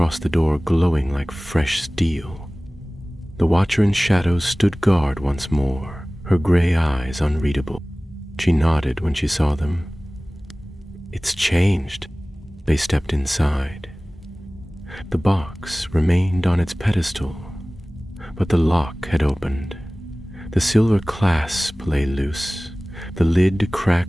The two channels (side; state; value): both; normal; correlation 0.98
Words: the door glowing like fresh steel. The Watcher in Shadows stood guard once more, her gray eyes unreadable. She nodded when she saw them. "It's changed." They stepped inside. The box remained on its pedestal, but the lock had opened. The silver clasp lay loose, the lid